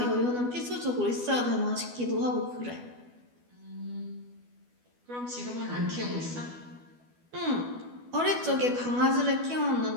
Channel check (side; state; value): left; late; 12 ms